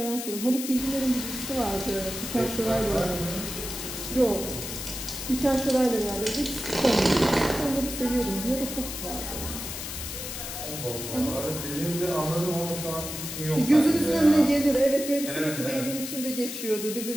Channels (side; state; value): left; noise; hiss, 7 dB below the sound